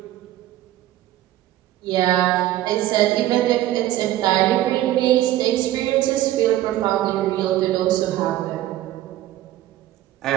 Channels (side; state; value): left; quieter; 14.3 dB